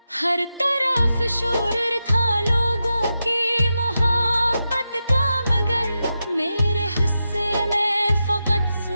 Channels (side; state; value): both; inverted; correlation -0.89